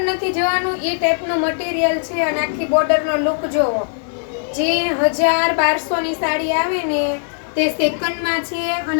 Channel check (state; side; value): silent; right; digital silence